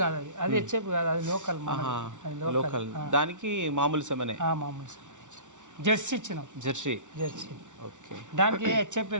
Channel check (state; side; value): late; left; 0.86 ms